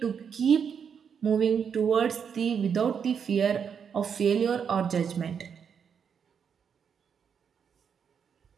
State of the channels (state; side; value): quieter; left; 7.1 dB